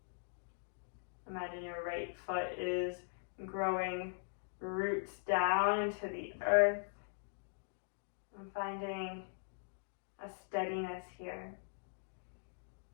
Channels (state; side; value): silent; right; digital silence